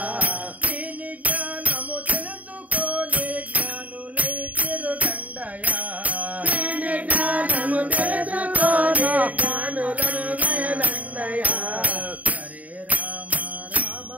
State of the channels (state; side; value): late; left; 0.071 ms